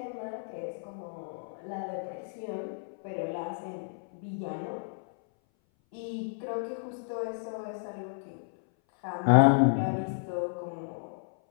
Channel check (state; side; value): silent; right; 57 dB below the other